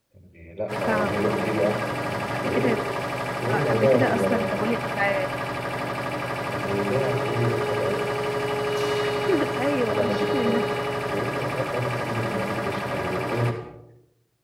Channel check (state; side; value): identical; both; correlation 1.00